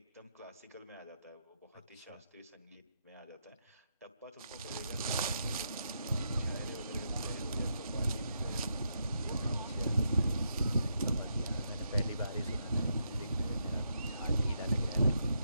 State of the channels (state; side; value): inverted; both; correlation -0.80